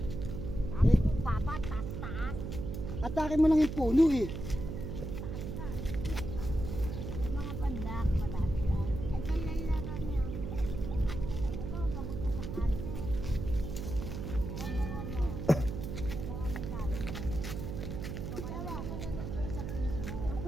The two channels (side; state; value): right; noise; hum, 5 dB below the sound